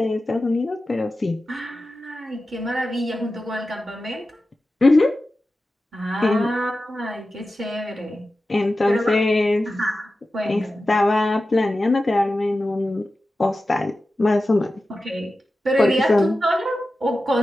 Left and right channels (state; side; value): normal; both; correlation 0.94